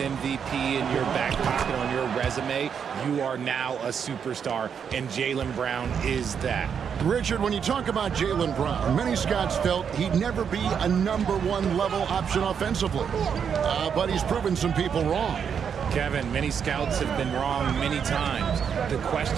in your back pocket on your resume, you are now a superstar, and Jaylen Brown is that. Richard, when you talk about Jaylen Brown, many scouts felt he'd never be a #1 level option offensively. But he's proven some people wrong. Kevin, many scouts have been wrong many times. The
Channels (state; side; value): quieter; left; 7.3 dB